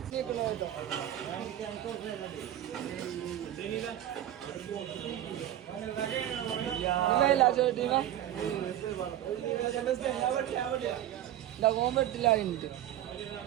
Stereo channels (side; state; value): left; quieter; 12.2 dB